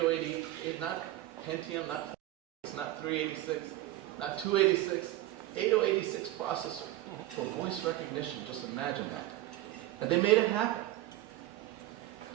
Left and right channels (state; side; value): quieter; left; 15.7 dB